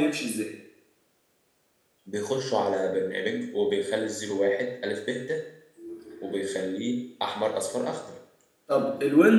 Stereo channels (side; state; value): both; identical; correlation 1.00